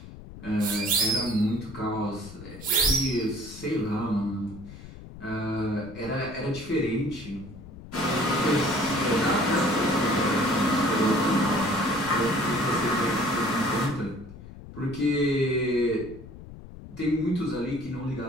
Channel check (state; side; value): noise; left; rumble, 15 dB below the sound